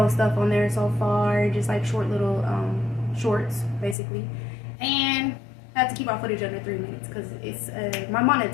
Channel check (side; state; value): right; drops out; at 4.0 s